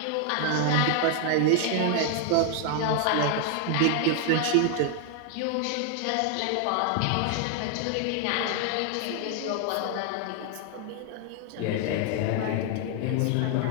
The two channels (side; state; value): both; different; correlation 0.00